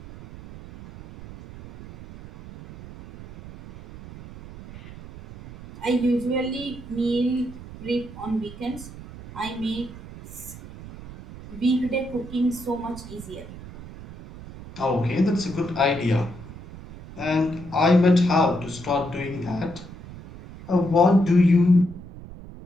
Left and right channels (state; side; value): noise; right; rumble, 15 dB below the sound